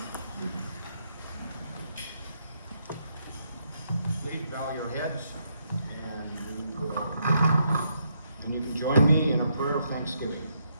Please bow your heads, and you can join me in a prayer of thanksgiving.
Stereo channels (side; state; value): both; inverted; correlation -0.76